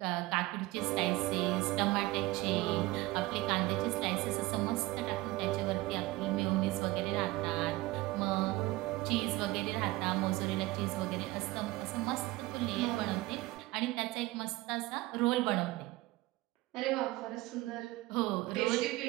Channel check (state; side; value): quieter; left; 19.6 dB